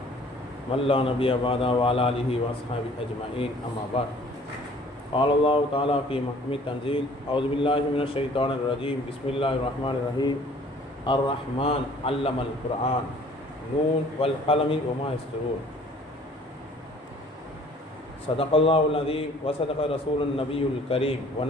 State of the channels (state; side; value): normal; both; correlation 0.54